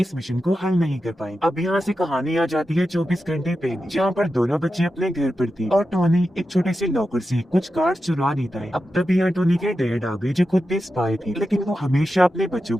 मिशन को हल नहीं कर पाए। अब यहाँ से कहानी आ जाती है 24 घंटे पहले, जहाँ पर दोनों बच्चे अपने घर पर थे और टोनी एक छोटे से लॉकर से कुछ कार्ड चुरा लेता है। अब तभी यहाँ टोनी के डैड आ गए जो खुद भी स्पाई थे, लेकिन वो हमेशा अपने बच्चों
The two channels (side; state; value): both; normal; correlation 0.90